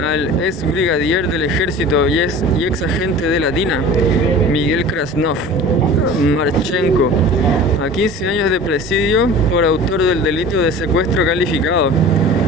al ex brigadier del ejército y ex agente de la DINA, Miguel Krasnov Marchenko, a 15 años de presidio por autor del delito de secuestro calificado.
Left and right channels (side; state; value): left; noise; rumble, 20 dB below the sound